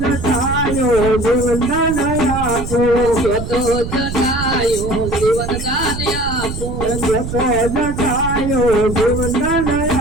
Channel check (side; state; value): right; noise; rumble, 6 dB below the sound